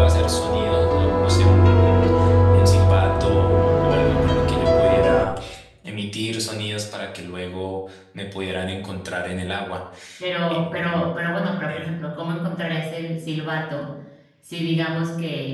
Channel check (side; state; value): both; identical; correlation 1.00